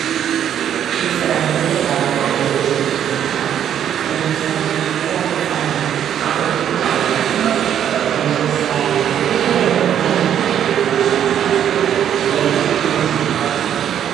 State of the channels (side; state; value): left; quieter; 9.7 dB